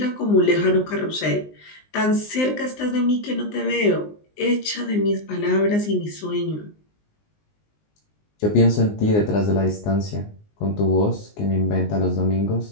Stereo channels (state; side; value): late; right; 19 ms